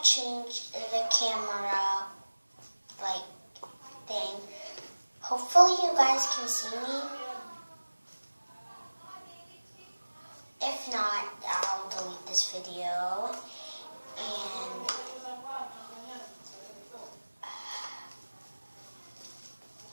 changed the camera like thing. Hopefully you guys can see me. If not, I'll delete this video.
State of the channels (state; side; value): inverted; both; correlation -1.00